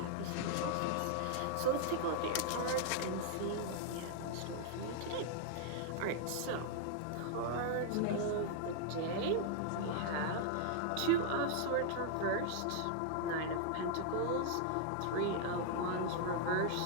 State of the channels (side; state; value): both; different; correlation -0.01